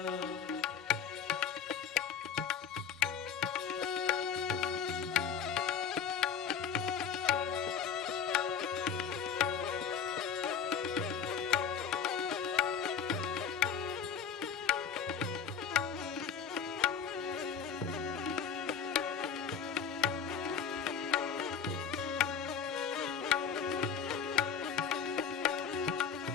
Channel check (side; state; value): right; quieter; 7.3 dB